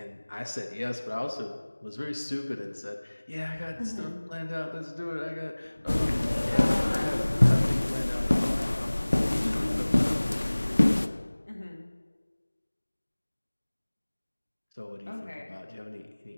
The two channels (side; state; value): both; inverted; correlation -1.00